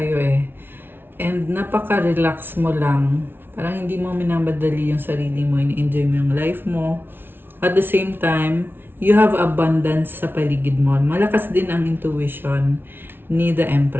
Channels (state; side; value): late; left; 0.10 ms